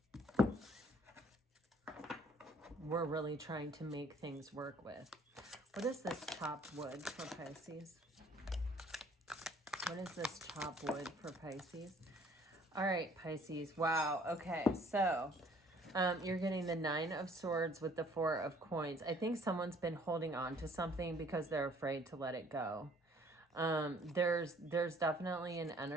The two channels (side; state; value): both; normal; correlation 0.58